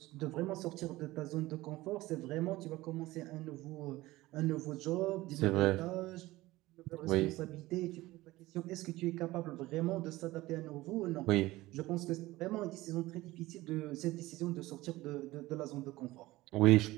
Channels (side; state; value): left; quieter; 18.4 dB